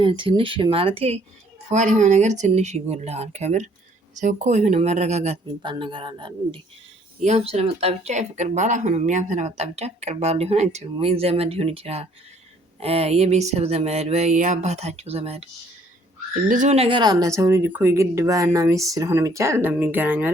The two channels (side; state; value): both; normal; correlation 0.61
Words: ትንሽ ማለቴ ፉአድ የሆነ ነገር ትንሽ ይጎልሃል። ከምር ሰው እኮ የሆነ መረጋጋት የሚባል ነገር አለ እንዴ? ያም ስለመጣ ብቻ የፍቅር ባል አይሆንም። ያም ስለመጣ ብቻ ፍቅር ባል ሊሆን አይችልም። ወይ ዘመድ ሊሆን ይችላል፣ የቤተሰብ ዘመድ ወይ የአባታቸው ዘመድ፣ ብዙ ነገር አለ። ሰው ልጅ እኮ የግድ ባልና ሚስት ስለሆነ ብቻ ለሚገናኙ